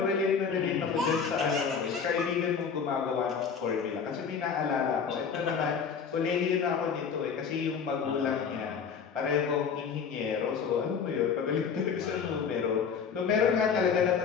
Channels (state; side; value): quieter; right; 6.4 dB